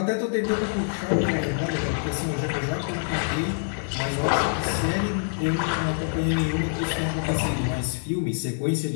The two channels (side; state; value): right; silent; 61 dB below the other